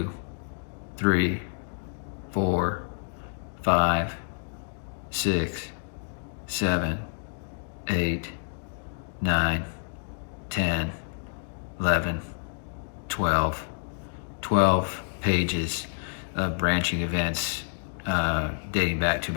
3, 4, 5, 6, 7, 8, 9, 10, 11, 12 pages of branching events dating back to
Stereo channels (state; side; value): silent; right; digital silence